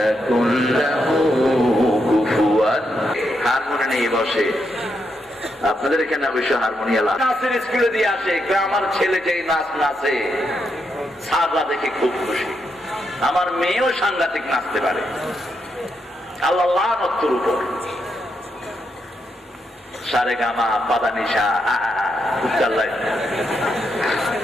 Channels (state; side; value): normal; both; correlation 0.81